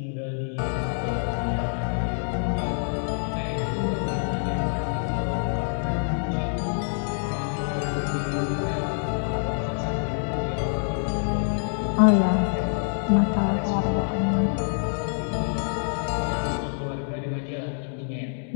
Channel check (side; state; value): right; silent; digital silence